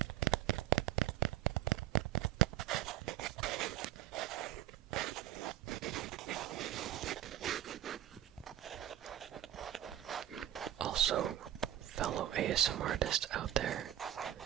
Also, fellow ASMR artists out there,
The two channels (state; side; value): quieter; left; 12.3 dB